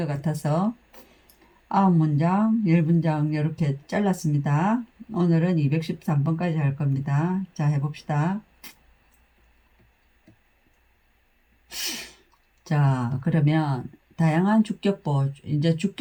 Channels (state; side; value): identical; both; correlation 1.00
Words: 같아서 9문장, 10문장 이렇게 잘랐습니다. 오늘은 213번까지 할 겁니다. 자, 해봅시다. 자, 그러면 다양한 주격보, 이제